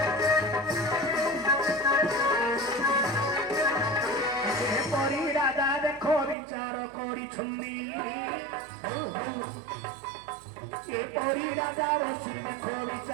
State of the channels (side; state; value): left; drops out; at 6.4 s